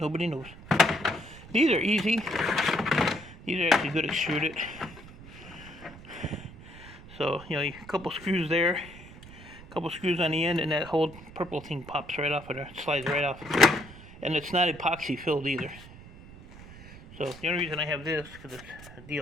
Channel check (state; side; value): noise; right; rumble, 18 dB below the sound